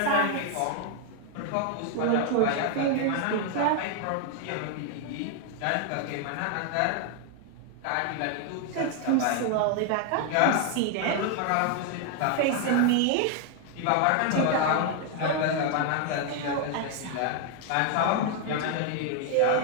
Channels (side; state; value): both; different; correlation 0.00